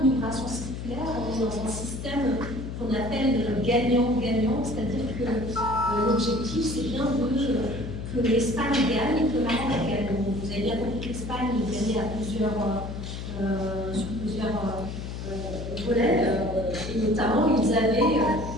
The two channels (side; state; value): left; noise; hum, 7 dB below the sound